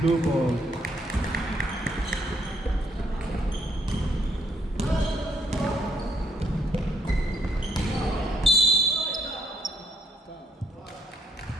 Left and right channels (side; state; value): both; normal; correlation 0.71